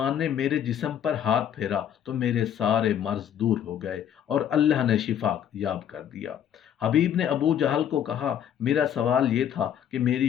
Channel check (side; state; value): right; quieter; 9.5 dB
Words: نے میرے جسم پر ہاتھ پھیرا تو میرے سارے مرض دور ہو گئے اور اللہ نے شفا یاب کر دیا۔ حبیب نے ابو جہل کو کہا، میرا سوال یہ تھا کہ میری